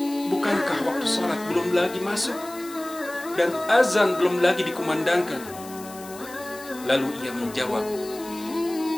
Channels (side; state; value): left; noise; hiss, 17 dB below the sound